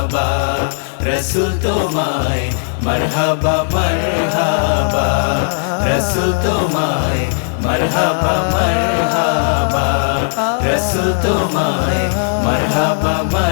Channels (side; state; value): right; silent; 69 dB below the other